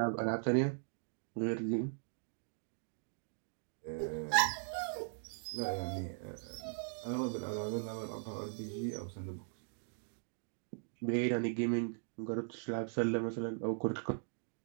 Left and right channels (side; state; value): left; silent; digital silence